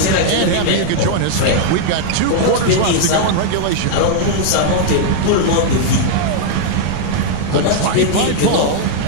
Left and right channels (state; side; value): different; both; correlation -0.01